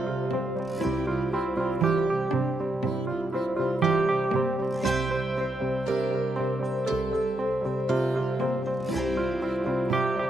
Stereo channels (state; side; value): normal; both; correlation 0.81